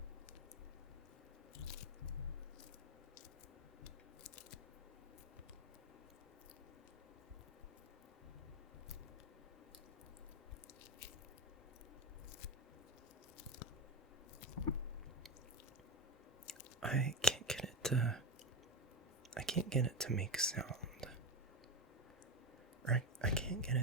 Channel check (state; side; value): normal; both; correlation 0.16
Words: I can't get it to make sound. Right? I can't get